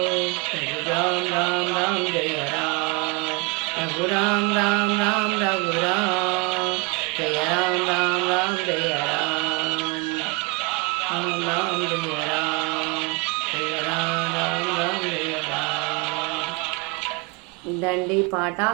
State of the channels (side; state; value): left; quieter; 27.4 dB